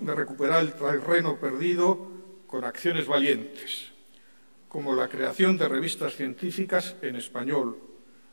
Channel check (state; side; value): inverted; both; correlation -1.00